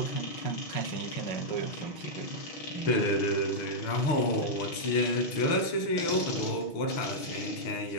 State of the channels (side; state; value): right; late; 6.1 ms